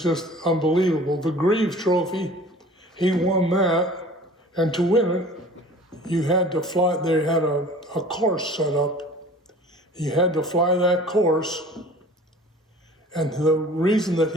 just unbelievable. The Greaves Trophy, he won that, and to win it, you had to fly. They had a course set up. You had to fly that course, and the reason that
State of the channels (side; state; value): both; normal; correlation 0.45